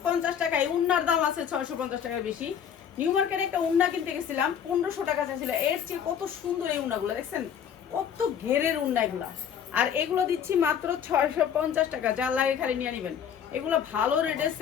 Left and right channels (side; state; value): right; quieter; 8.4 dB